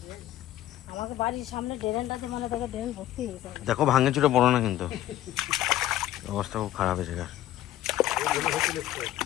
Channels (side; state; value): right; quieter; 13.6 dB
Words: আমাকে বাড়ির সামনে ড্রেনটাতে মানে দেখো ড্রেন ভর্তি হয়ে যায়। দেখো ভাঙে চুরে পড়ো না কিন্তু, অবস্থা খুব খারাপ হয়েছে। না